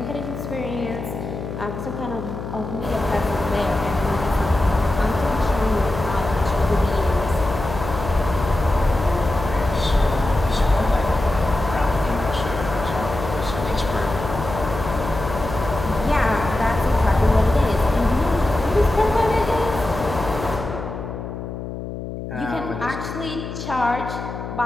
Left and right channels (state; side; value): noise; left; hum, 8 dB below the sound